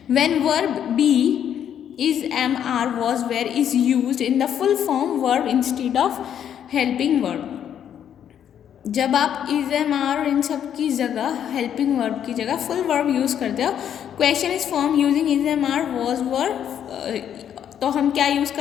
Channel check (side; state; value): right; quieter; 9.4 dB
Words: When verb be is, am, are, was, were is used in the full form verb instead of helping verb. जब आप is, am, are इन सब की जगह helping verb की जगह full verb यूज़ करते हो, question is formed using is, am, are, was, were, तो हम क्या यूज़